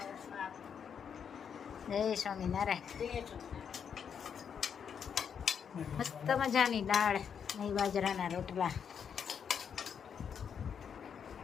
જય સ્વામિનારાયણ. મસ્ત મજાની દાળ નહીં બાજરાના રોટલા.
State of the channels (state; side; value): quieter; right; 7.4 dB